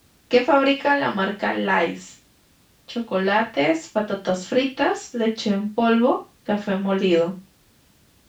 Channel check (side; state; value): both; identical; correlation 1.00